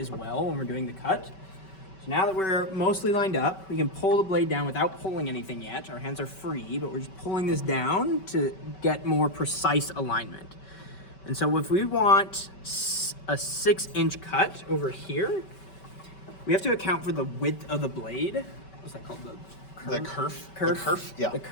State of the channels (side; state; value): right; late; 5.2 ms